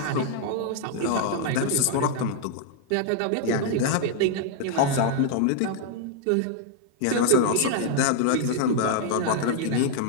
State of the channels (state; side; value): different; both; correlation 0.00